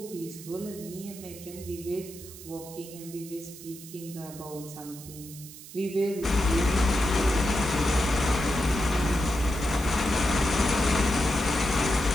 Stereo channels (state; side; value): noise; right; hiss, 16 dB below the sound